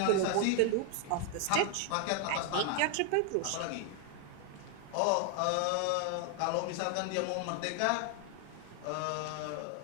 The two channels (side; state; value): both; different; correlation 0.01